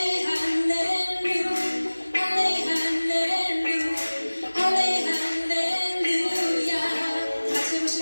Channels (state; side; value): inverted; both; correlation -1.00